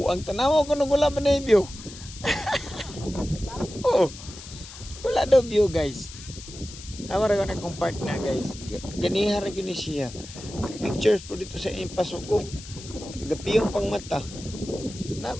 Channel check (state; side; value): noise; left; hiss, 15 dB below the sound